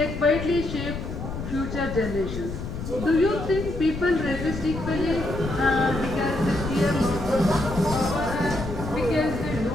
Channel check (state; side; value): noise; left; rumble, 7 dB below the sound